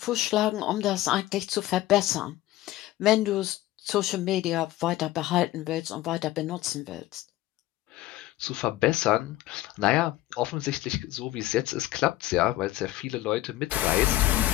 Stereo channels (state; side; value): quieter; right; 15.8 dB